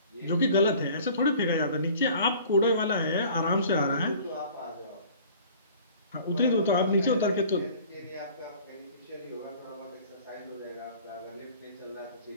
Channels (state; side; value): inverted; both; correlation -0.49